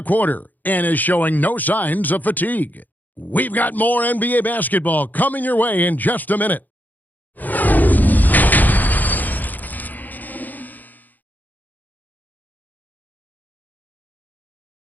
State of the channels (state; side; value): late; right; 0.084 ms